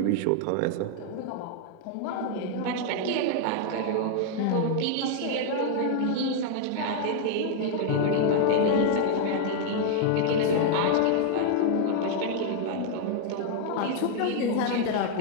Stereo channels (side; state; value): both; different; correlation 0.00